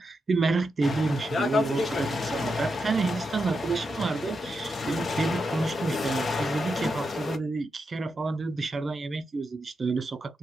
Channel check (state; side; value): normal; both; correlation 0.86